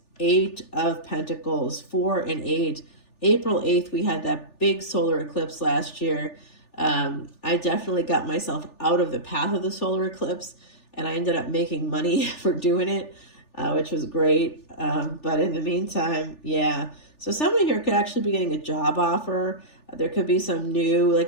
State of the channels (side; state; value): right; late; 3.4 ms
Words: 8 of Pentacles, 4 and 8. April 8th, we had that big solar eclipse last year. I definitely got myself out of the path of the solar eclipse, and I ended up making money for doing it, which was great. But in the meantime, yeah. So someone here could actually be getting a job offer. There could be some new,